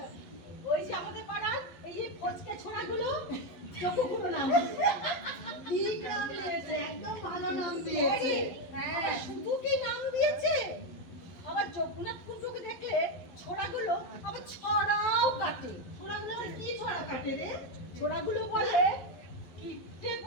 ওই যে আমাদের পাড়ার এই যে ফচকে ছোড়াগুলো চক্ষুগুলো নাম। ঠিক নাম দিয়েছে, একদম ভালো নাম দিয়েছে। হ্যাঁ, শুধু কি নাম দিয়েছে, আবার জগন্নাথ কুণ্ডুকে দেখলে ছোড়াগুলো আবার ছড়াও কাটে। ছোড়াগুলো আবার কি ছড়া কাটে রে? ছোড়াগুলো বলে কিট্টে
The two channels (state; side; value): late; right; 11 ms